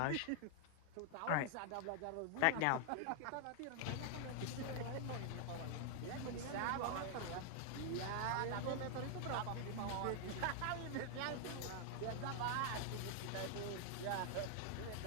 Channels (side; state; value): both; different; correlation 0.00